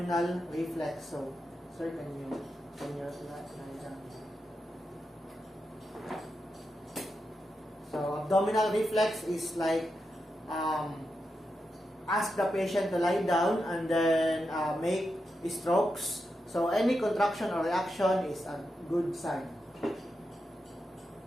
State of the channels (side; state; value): both; normal; correlation 0.87